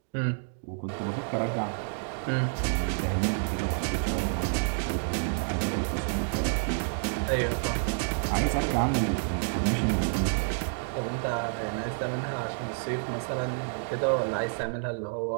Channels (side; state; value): left; silent; digital silence